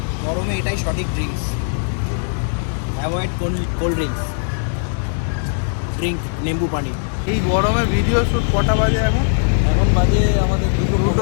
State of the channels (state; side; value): silent; right; digital silence